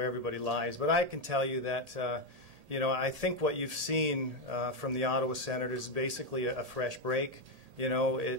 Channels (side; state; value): left; late; 1.8 ms